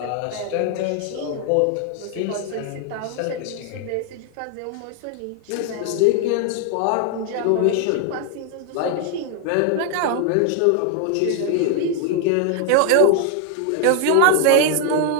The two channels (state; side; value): different; both; correlation 0.00